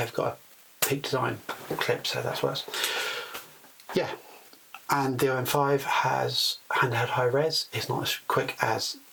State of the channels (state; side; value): identical; both; correlation 1.00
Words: got a Peak Design clip, so that's worse. Yeah, and the OM5 has handheld high res. It's not as quick as